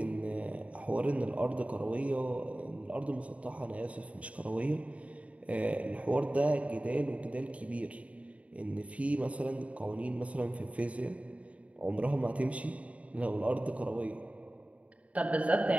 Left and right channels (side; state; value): left; late; 0.066 ms